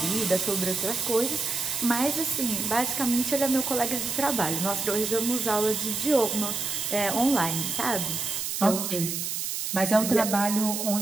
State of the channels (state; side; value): noise; right; hiss, 3 dB below the sound